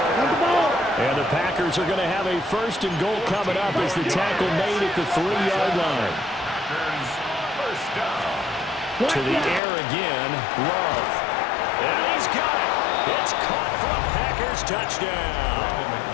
And the Packers are going to have a first and goal coming up as the tackle made at the 3-yard line. Packers first down. To the air again, Love. And he's got it. It's caught for a Packers touchdown.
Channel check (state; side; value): drops out; right; at 9.6 s